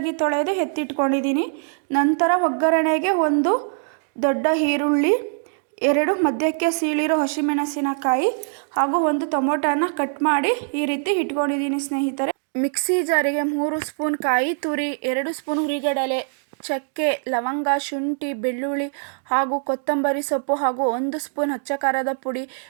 ತೊಳೆದು ಎತ್ತಿಟ್ಕೊಂಡಿದ್ದೀನಿ. ನಂತರ ಒಗ್ಗರಣೆಗೆ ಒಂದು ದೊಡ್ಡ ಈರುಳ್ಳಿ, 2 ಮಧ್ಯಕ್ಕೆ ಸೀಳಿರೋ ಹಸಿಮೆಣಸಿನಕಾಯಿ ಹಾಗೂ ಒಂದು ಟೊಮೊಟೊನ ಕಟ್ ಮಾಡಿ ಈ ರೀತಿ ಇಟ್ಕೊಂಡಿದ್ದೀನಿ ಸ್ನೇಹಿತರೆ. ಮಿಕ್ಸಿ ಜಾರಿಗೆ 3 ಸ್ಪೂನ್ ಕಾಯಿ ತುರಿ, 2 ಸ್ಪೂನ್ ಹುರಿಗಡಲೆ, ಚಕ್ಕೆ, ಲವಂಗ, ಶುಂಠಿ, ಬೆಳ್ಳುಳ್ಳಿ ಹಾಗೂ ಕೊತ್ತಂಬರಿ ಸೊಪ್ಪು ಹಾಗೂ 1 ಸ್ಪೂನ್ ಅಚ್ಚ ಖಾರದ ಪುಡಿ,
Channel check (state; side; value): silent; left; digital silence